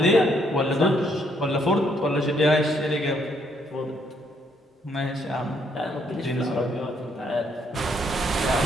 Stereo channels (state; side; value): normal; both; correlation 0.71